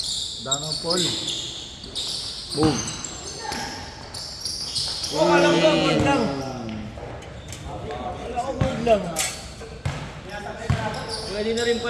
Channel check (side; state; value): both; identical; correlation 1.00